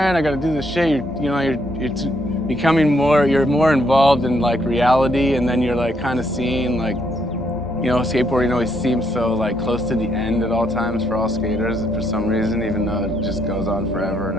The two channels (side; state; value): both; normal; correlation 0.74